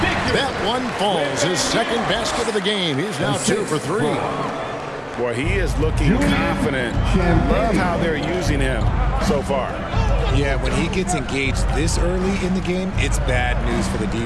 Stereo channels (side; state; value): both; identical; correlation 1.00